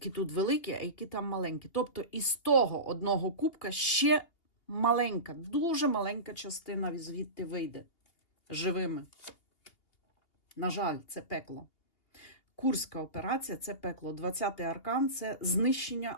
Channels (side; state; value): right; late; 2.8 ms